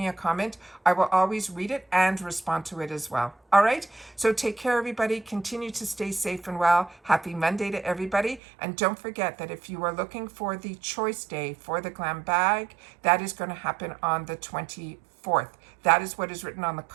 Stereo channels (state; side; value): drops out; left; at 8.4 s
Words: a comment. I will always read it and respond to it as well. All right, so take care, everybody. Continue to stay safe and well. Happy Monday to everybody. And don't forget that if you are looking for the choice day for the glam bag, that is going to happen on the 24th. That is what is written on the